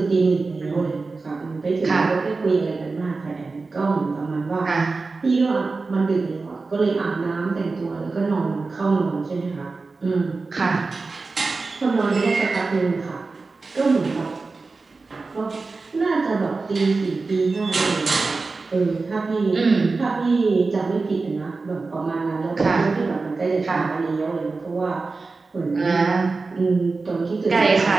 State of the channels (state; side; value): quieter; left; 3.9 dB